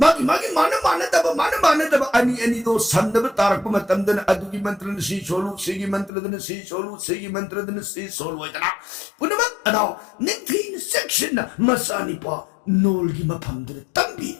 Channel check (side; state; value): right; drops out; at 6.1 s